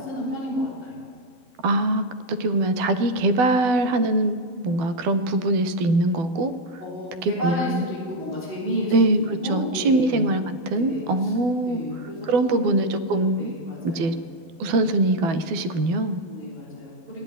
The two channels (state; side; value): late; left; 12 ms